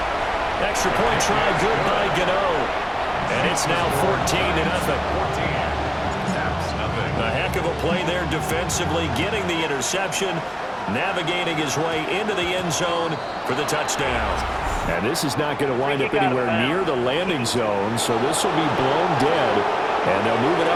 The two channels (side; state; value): both; identical; correlation 1.00